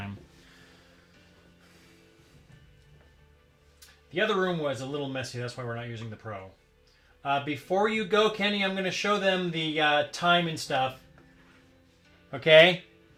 The other room was a little messy. That's why we're not using the Pro. Before you go, Kenny, I'm going to show them the time and stuff. Okay?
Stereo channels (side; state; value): both; identical; correlation 1.00